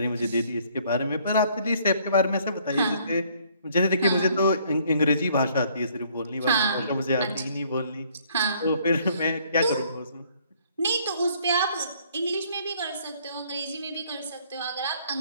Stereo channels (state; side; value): inverted; both; correlation -0.63